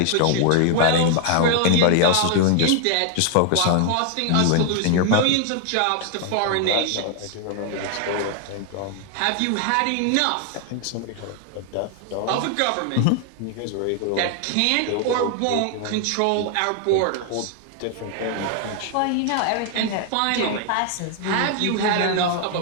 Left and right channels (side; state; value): both; different; correlation 0.00